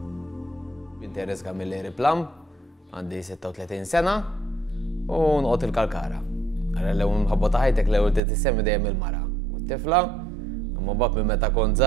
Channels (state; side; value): drops out; left; at 8.2 s